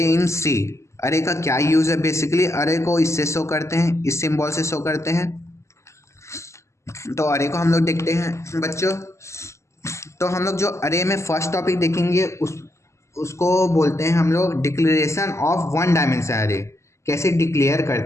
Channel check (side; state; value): right; late; 0.14 ms